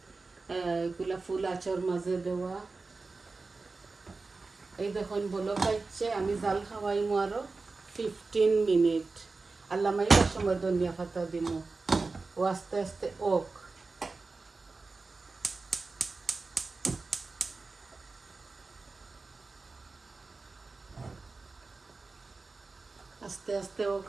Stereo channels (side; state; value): left; quieter; 3.8 dB